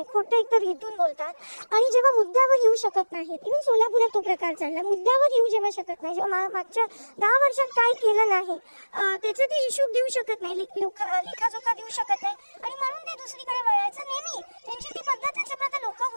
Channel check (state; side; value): inverted; both; correlation -1.00